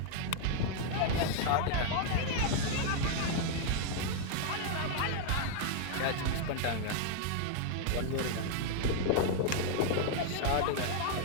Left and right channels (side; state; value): both; different; correlation 0.00